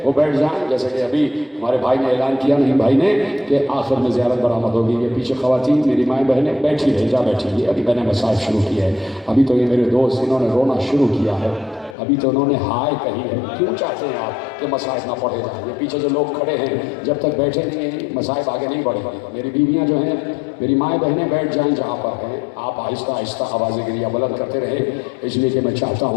وہ بیٹھ جائیں۔ جیسے کہ ابھی ہمارے بھائی نے اعلان کیا، نہیں بھائی نے، کہ آخر میں زیارت برآمد ہوگی۔ یہ پیچھے خواتین میری مائیں بہنیں بیٹھی رہی، جا بیٹھی ہوئی، ابھی میں نے مصائب شروع کیا ہے۔ ابھی تو یہ میرے دوست انہوں نے رونا شروع کیا ہے، ابھی تو انہوں نے ہائے کہی ہے۔ کیوں چاہتے ہیں آپ کہ مصائب نہ پڑھے جائیں؟ یہ پیچھے جو لوگ کھڑے ہیں جب تک بیٹھے نہیں ہیں مصائب آگے نہیں بڑھے گا۔ میری بیویاں جو ہیں، میری مائیں بہنیں بیٹھ جائیں جہاں پر ہیں، آپ آہستہ آہستہ آوازیں گریہ بلند کرتے رہیں، اس لیے کہ میں چاہتا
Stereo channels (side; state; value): right; drops out; at 12.0 s